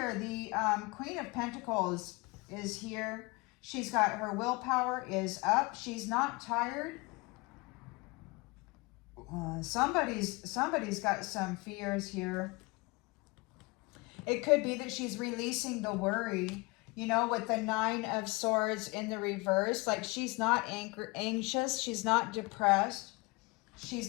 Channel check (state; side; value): quieter; right; 26.0 dB